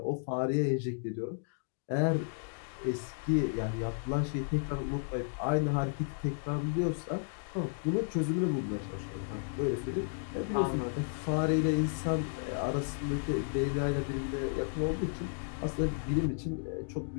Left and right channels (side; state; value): right; silent; digital silence